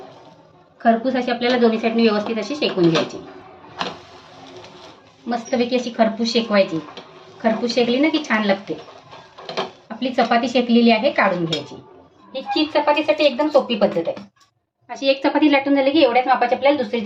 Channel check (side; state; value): both; identical; correlation 1.00